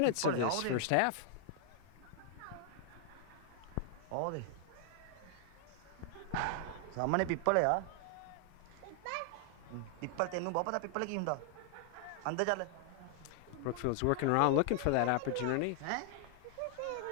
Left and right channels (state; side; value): different; both; correlation 0.00